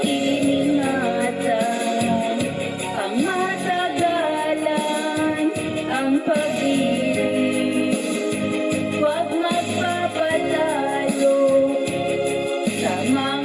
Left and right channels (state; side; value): identical; both; correlation 1.00